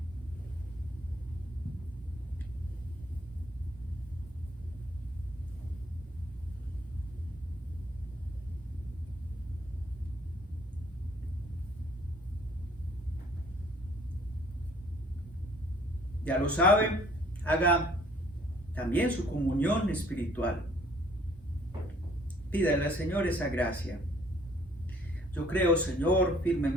Ya lo saben, haga también su comunión espiritual. Pídale al Señor esa gracia. Yo creo, Señor,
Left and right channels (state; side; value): normal; both; correlation 0.58